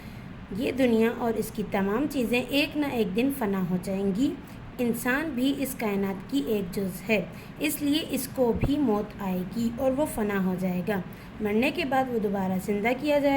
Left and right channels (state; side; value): identical; both; correlation 1.00